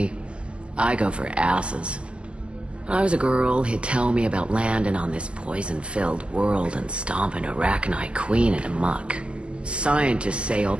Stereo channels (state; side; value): late; left; 0.052 ms